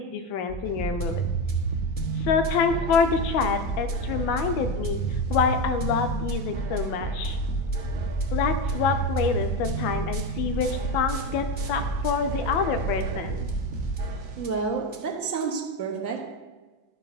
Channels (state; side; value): late; right; 6.0 ms